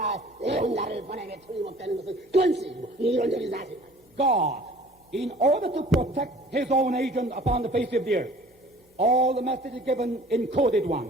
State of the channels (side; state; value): both; normal; correlation 0.49